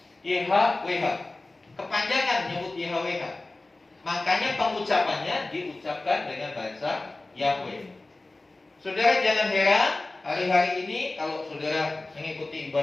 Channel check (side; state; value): right; quieter; 3.0 dB